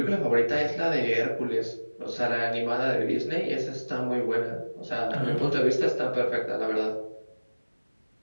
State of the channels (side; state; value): both; inverted; correlation -1.00